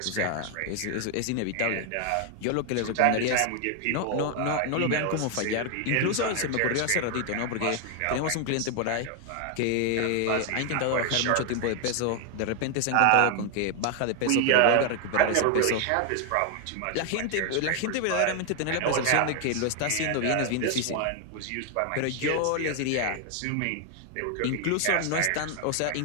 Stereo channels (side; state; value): both; different; correlation 0.00